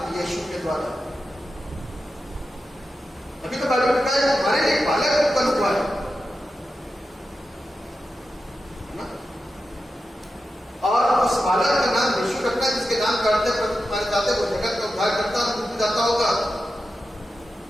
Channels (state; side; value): normal; both; correlation 0.91